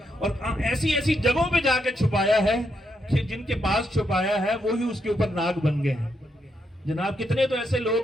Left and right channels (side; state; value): both; normal; correlation 0.80